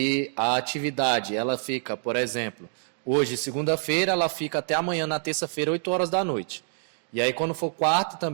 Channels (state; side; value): silent; left; digital silence